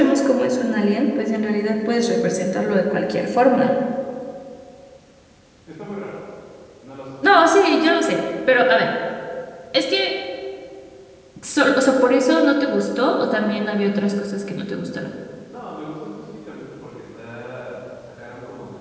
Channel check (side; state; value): both; identical; correlation 1.00